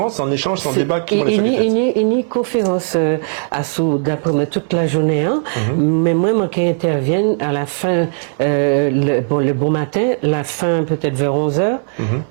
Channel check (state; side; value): silent; left; 68 dB below the other